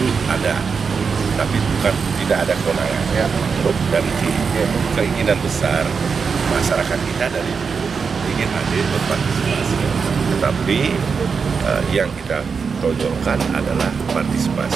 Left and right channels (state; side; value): quieter; left; 5.6 dB